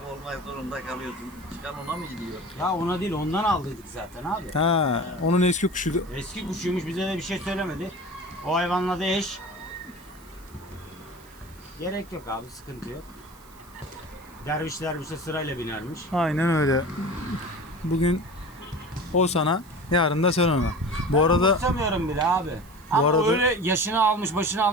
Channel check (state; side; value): noise; right; hiss, 25 dB below the sound